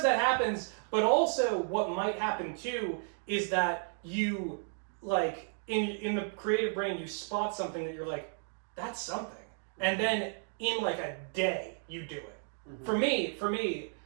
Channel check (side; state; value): left; silent; 56 dB below the other